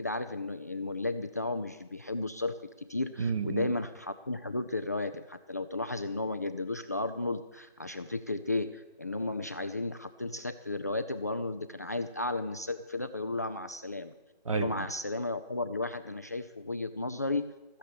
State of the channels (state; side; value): inverted; both; correlation -0.67